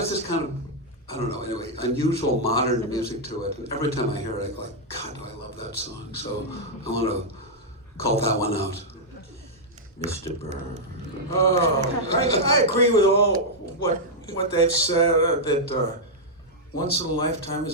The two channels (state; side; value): normal; both; correlation -0.05